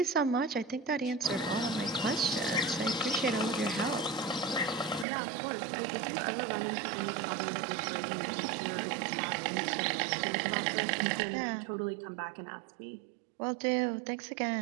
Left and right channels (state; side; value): drops out; left; at 5.1 s